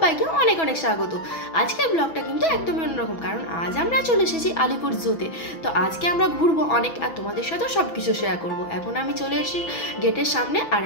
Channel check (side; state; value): right; late; 6.1 ms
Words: অনেক অনেক স্বাগত। আজকের ব্লগটা কিন্তু একদমই অন্যরকম, কারণ আজ আমরা চলে এসেছি আলিপুর জুতে। তো আজকে আমরা ঘুরবো অনেক, আর তোমাদের সাথেও সব কিছু শেয়ার করবো। এখন আমি চলে এসেছি গেটের সামনে, আর